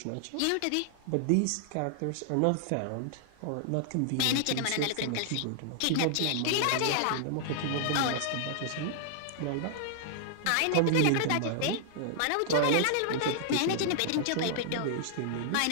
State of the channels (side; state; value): both; different; correlation -0.01